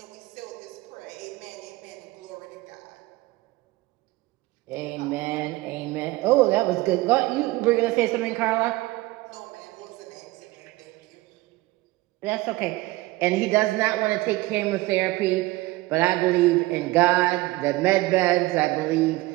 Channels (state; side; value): quieter; left; 19.9 dB